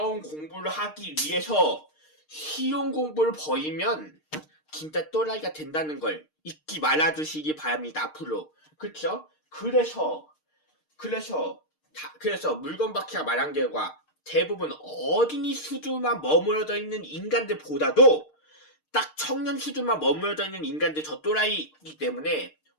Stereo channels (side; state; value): right; late; 6.5 ms